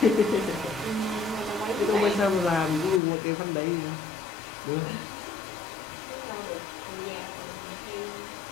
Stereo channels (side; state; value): right; drops out; at 3.0 s